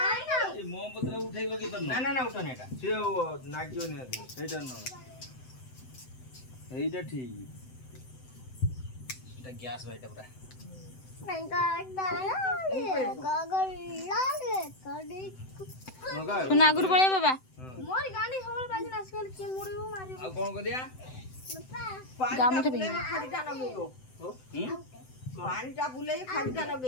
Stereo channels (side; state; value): right; late; 7.8 ms